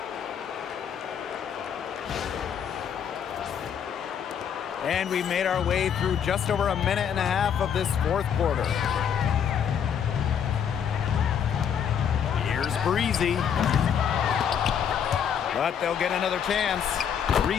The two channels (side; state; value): right; quieter; 8.1 dB